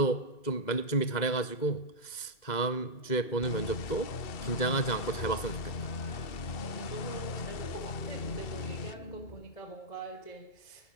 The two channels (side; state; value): right; late; 2.1 ms